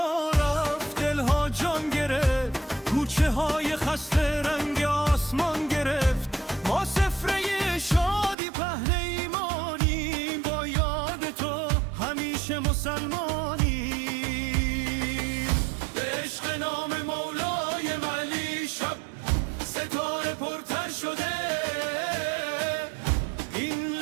رفت دلها جان گرفت، کوچه های خسته رنگ آسمان گرفت. ما سفره شادی پهن ایمانیم، با یاد تو همیشه مسلمانیم. به عشق نام مولای علی شب ستاره پرتر شده، این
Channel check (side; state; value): left; drops out; at 8.3 s